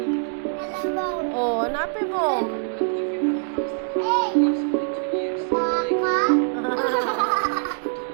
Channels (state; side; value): silent; left; digital silence